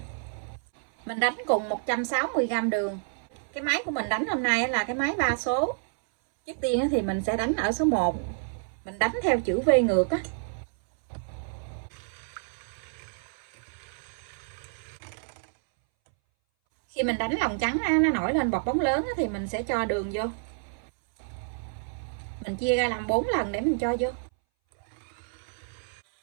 Mình đánh cùng 160g đường. Cái máy của mình đánh hôm nay là cái máy 3 số. Trước tiên thì mình sẽ đánh ở số 1. Mình đánh theo chữ V ngược á. Khi mình đánh lòng trắng nó nổi lên bọt bóng lớn thì mình sẽ cho đường vô. Mình chia ra làm 4 lần để mình cho vô.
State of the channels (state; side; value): silent; left; 59 dB below the other